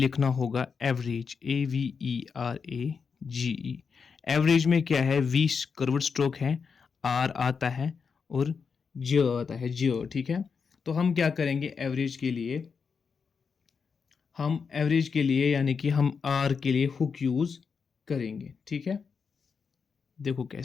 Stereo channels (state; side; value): quieter; right; 5.7 dB